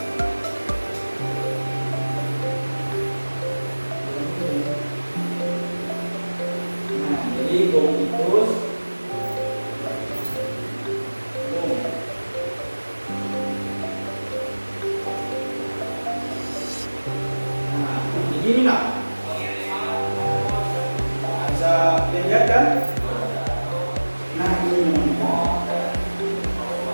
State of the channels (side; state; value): both; inverted; correlation -1.00